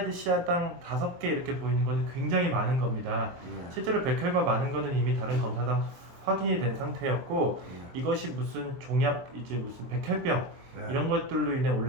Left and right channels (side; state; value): left; late; 23 ms